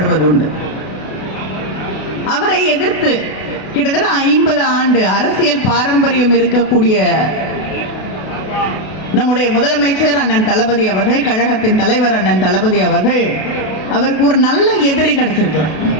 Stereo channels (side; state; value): right; late; 32 ms